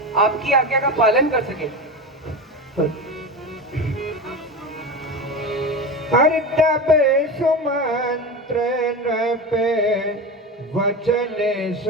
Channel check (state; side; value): normal; both; correlation 0.24